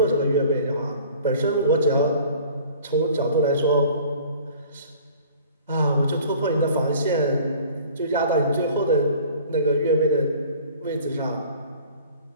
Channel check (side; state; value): both; inverted; correlation -0.48